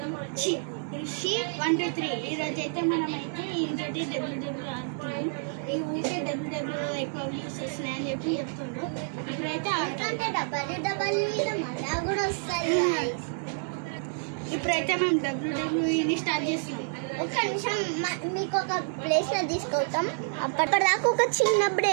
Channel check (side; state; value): left; silent; digital silence